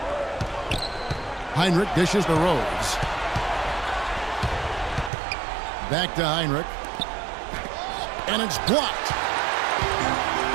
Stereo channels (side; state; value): left; drops out; at 5.1 s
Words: Heinrich dishes to Rose. Back to Heinrich. And it's blocked.